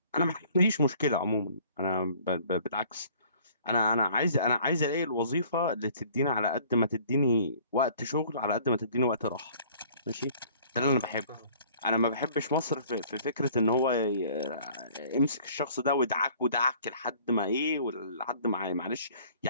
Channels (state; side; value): inverted; both; correlation -0.54